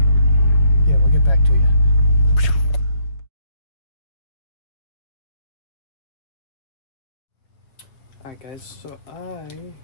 yeah, we'll get back to you. Alright guys, so I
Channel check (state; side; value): late; right; 7.1 ms